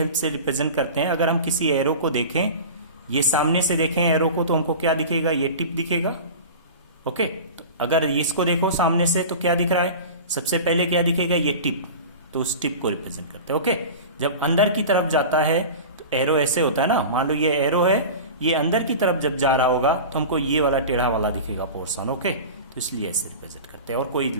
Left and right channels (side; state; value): both; inverted; correlation -0.33